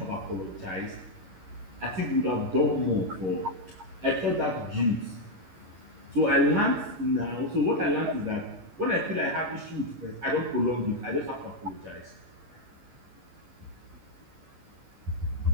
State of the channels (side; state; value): left; late; 11 ms